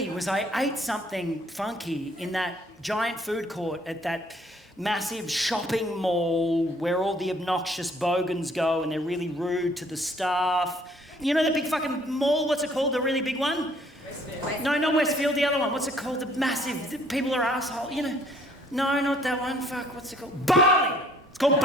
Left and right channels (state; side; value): normal; both; correlation 0.61